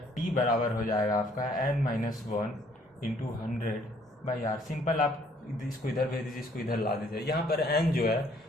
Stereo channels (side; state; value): both; normal; correlation 0.63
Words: T बराबर हो जाएगा आपका n - 1 × 100/R। सिंपल आप इसको इधर भेज दीजिए, इसको इधर ला दीजिए। यहाँ पर n जो है